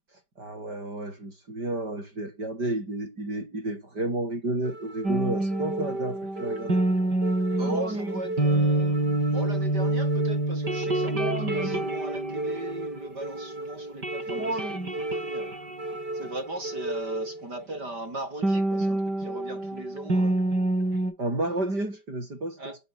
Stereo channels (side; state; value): left; late; 5.1 ms